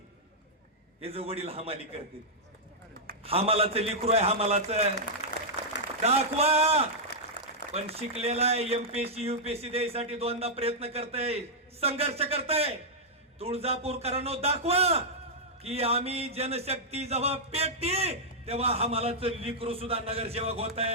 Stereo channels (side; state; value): both; normal; correlation -0.08